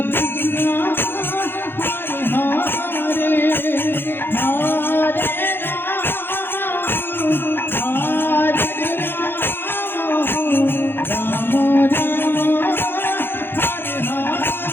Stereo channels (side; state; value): right; late; 0.10 ms